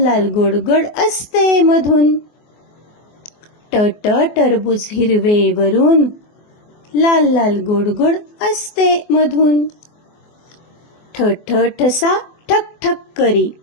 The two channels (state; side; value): late; right; 24 ms